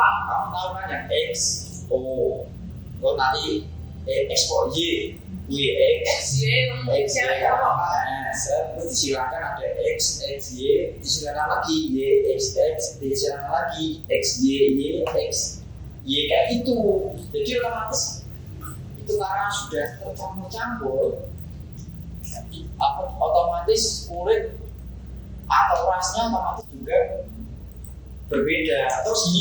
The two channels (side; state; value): both; identical; correlation 1.00